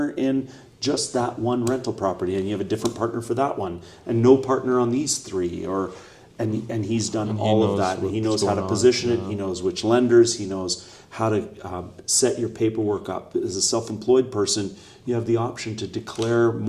in just that one rental property, and you have a different partner for that one, and no partner on these three, and he's done all of that, and he knows how to position it. He knows which lenders. He knows how to set your paperwork up. As a self-employed person, you have the option to declare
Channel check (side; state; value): both; identical; correlation 1.00